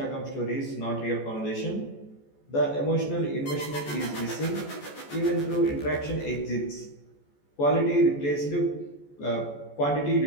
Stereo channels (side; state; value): right; late; 14 ms